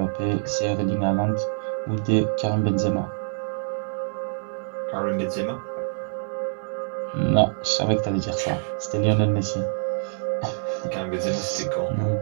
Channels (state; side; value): silent; left; digital silence